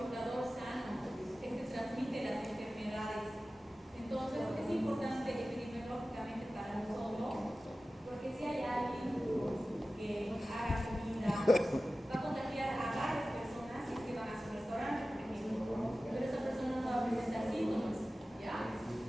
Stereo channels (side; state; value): both; normal; correlation 0.95